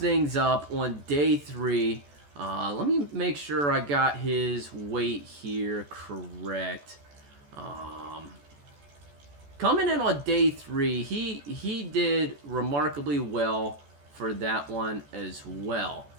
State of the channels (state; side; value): late; left; 14 ms